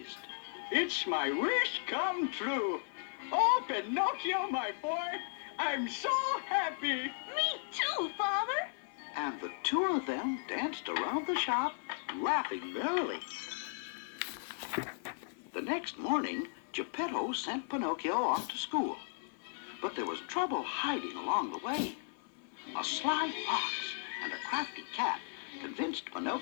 It's my wish come true. Oh, Pinocchio, my boy, I'm so happy. Me too, Father. And the two of them danced around the shop, laughing merrily. The next morning, Geppetto sent Pinocchio off to school. But there was trouble hiding along the way. A sly fox and a crafty cat convinced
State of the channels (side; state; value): right; silent; 54 dB below the other